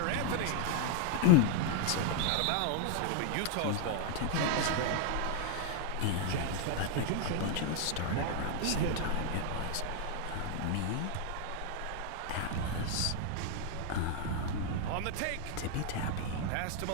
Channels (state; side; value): different; both; correlation 0.00